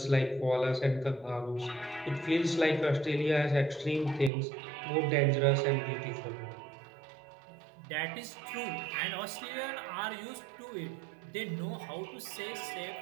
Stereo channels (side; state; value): left; drops out; at 4.3 s